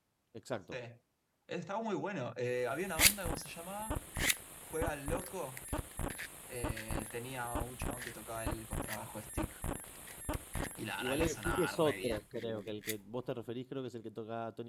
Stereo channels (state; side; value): identical; both; correlation 1.00